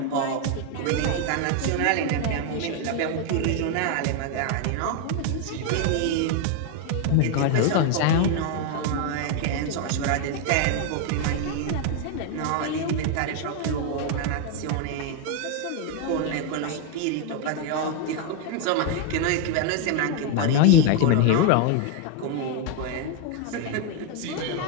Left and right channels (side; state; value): both; different; correlation 0.01